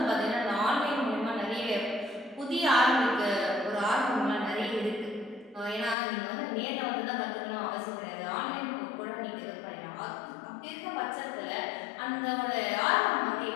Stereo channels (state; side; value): drops out; right; at 6.0 s